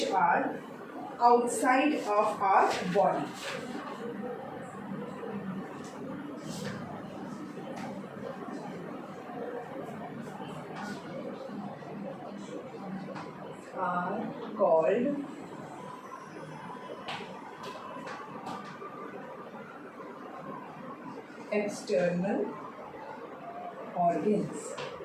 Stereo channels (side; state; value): both; identical; correlation 1.00